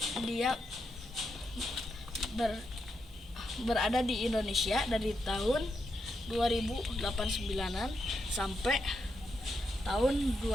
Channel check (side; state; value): both; normal; correlation 0.83